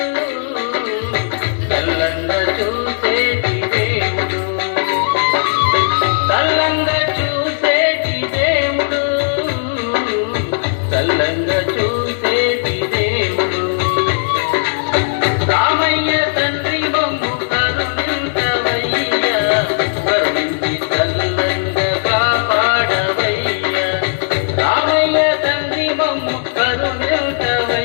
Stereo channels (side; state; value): right; silent; digital silence